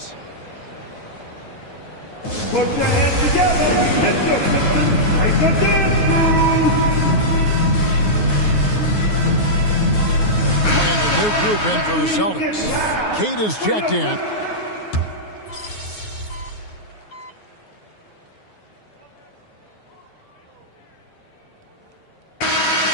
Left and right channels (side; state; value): right; late; 9.5 ms